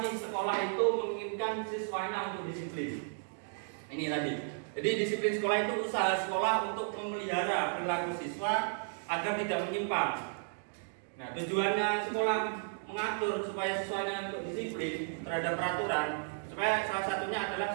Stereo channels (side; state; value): left; silent; digital silence